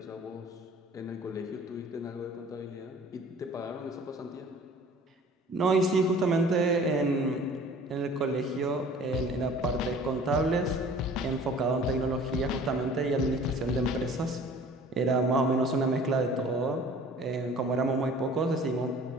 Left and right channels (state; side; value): normal; both; correlation 0.48